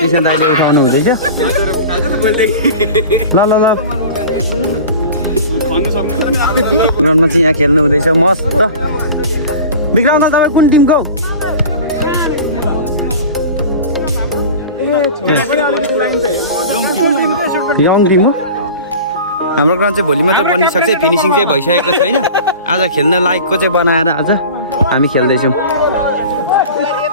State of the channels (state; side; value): inverted; both; correlation -0.37